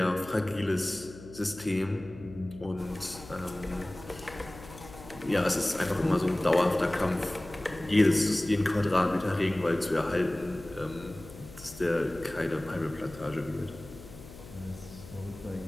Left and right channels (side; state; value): left; noise; hum, 17 dB below the sound